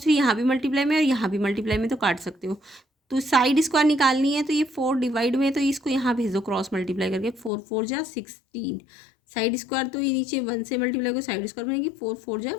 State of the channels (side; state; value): right; drops out; at 7.5 s